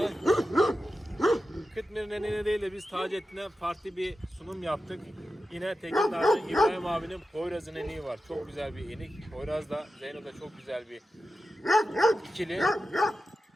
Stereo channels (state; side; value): normal; both; correlation 0.92